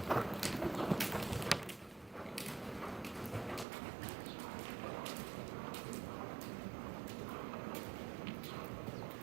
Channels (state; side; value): drops out; left; at 3.7 s